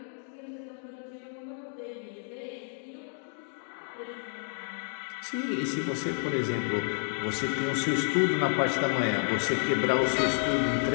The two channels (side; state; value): right; silent; 56 dB below the other